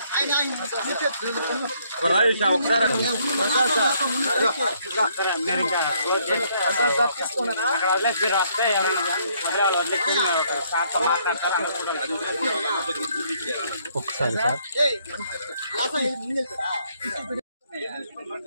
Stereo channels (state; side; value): inverted; both; correlation -0.68